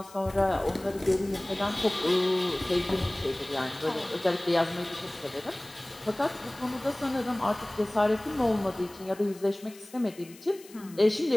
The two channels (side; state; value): left; noise; hiss, 21 dB below the sound